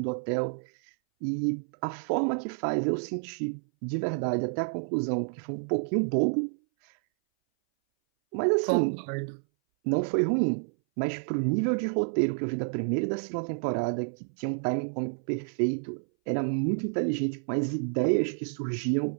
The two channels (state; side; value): silent; left; 59 dB below the other